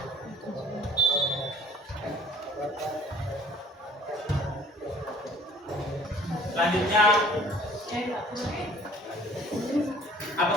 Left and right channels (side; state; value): both; normal; correlation 0.52